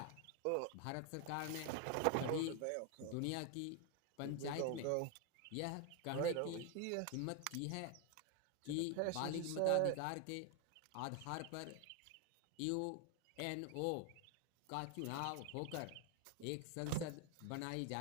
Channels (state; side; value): different; both; correlation 0.01